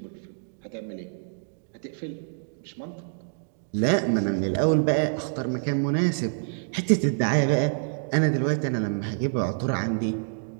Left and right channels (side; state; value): left; silent; digital silence